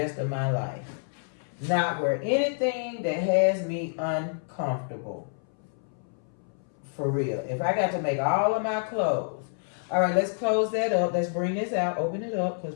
of my life. Not wear anything that has me uncomfortable. For real. If I got to make all of my clothes. All right, let's close that up. Let's bring this out. Open it up,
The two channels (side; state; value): right; silent; 59 dB below the other